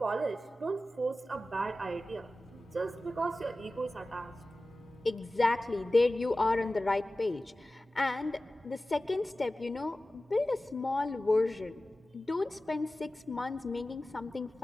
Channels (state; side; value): normal; both; correlation 0.96